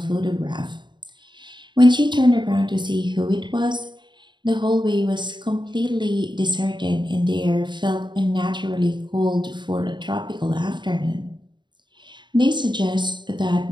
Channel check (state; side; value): late; left; 0.22 ms